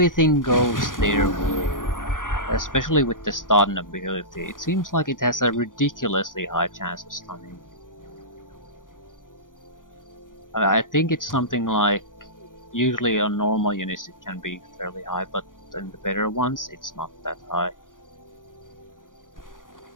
goes their way, especially with the stun ability. It seems like it has a ridiculously high chance of stunning. I think it's something like, usually on normal units it can be fairly high, but in the better ones it's not that high.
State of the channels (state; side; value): late; right; 0.89 ms